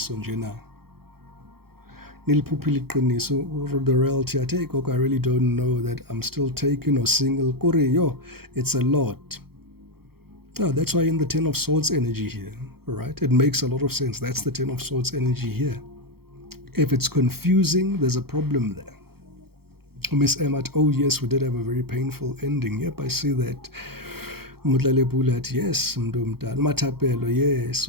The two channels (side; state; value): left; late; 0.95 ms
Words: nje na. Niliphuphile iqiniso. The reality, I take, I really don't know that I'm still taken or single. Kore yo, it's a lot. Oh, that's why in the Ten of Swords energy here, right? It makes a lot of sense. That's the Ten of Swords energy here. If it's confusing, there's a problem there. Miss Emmat, oh yes, we did have a very painful ending. Yep, I see that. Yes, Matapelo, yes.